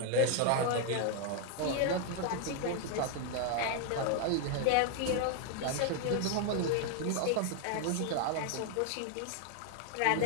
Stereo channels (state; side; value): different; both; correlation 0.00